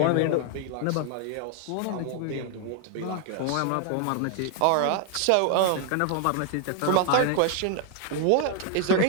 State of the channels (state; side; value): different; both; correlation 0.00